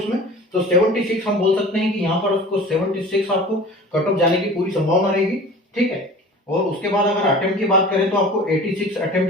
तो 76 हम बोल सकते हैं कि यहाँ पर उसको 76 आपको कट ऑफ जाने की पूरी संभावना रहेगी, ठीक है। और उसके बाद अगर अटेम्प्ट की बात करें तो आपको 86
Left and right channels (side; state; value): both; normal; correlation 0.40